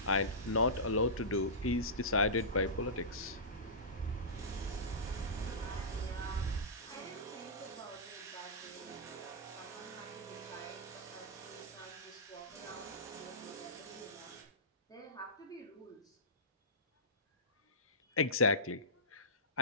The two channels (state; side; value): normal; both; correlation -0.19